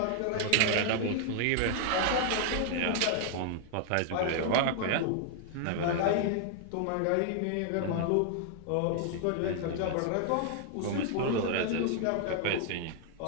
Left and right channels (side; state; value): both; different; correlation 0.00